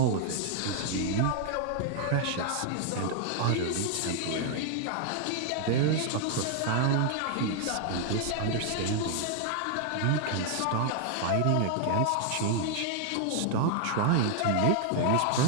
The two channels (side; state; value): both; different; correlation 0.00